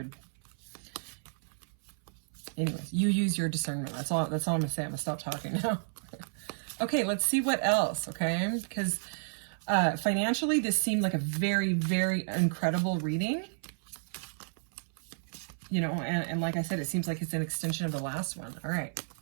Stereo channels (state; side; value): silent; left; 57 dB below the other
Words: Anyways, you use your discernment. That's all I'm gonna say. I'm gonna stop talking now. Okay, let's see what else, okay? Because financially, this seemed like a very, very incredible reading. You know, and like I said, it seems like it's an extension of the last one. All right.